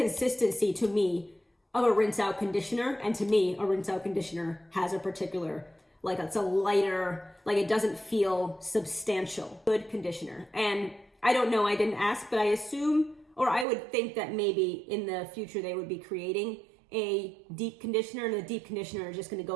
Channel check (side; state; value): left; drops out; at 13.7 s